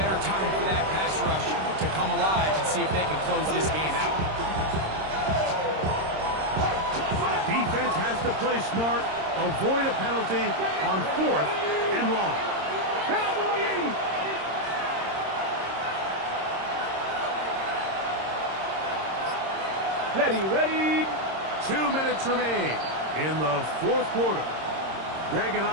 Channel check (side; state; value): left; late; 26 ms